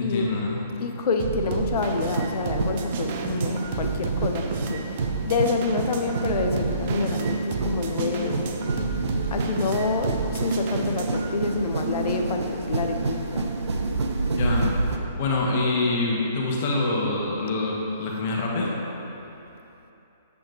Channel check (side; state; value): both; inverted; correlation -0.58